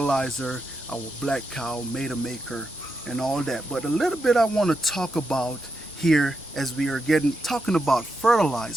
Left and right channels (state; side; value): normal; both; correlation 0.85